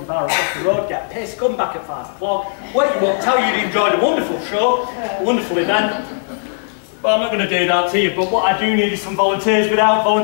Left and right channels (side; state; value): right; silent; digital silence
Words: bar across the road, get pissed, come back at 5 o'clock, wake you up, tell you you enjoyed a wonderful show, a wonderful event. But I'm not going to do that to you, but what I do need is some volunteers. Without